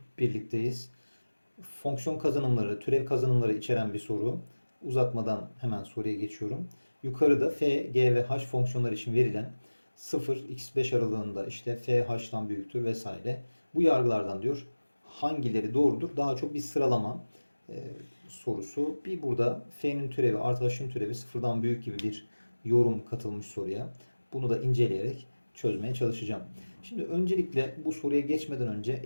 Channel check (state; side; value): inverted; both; correlation -1.00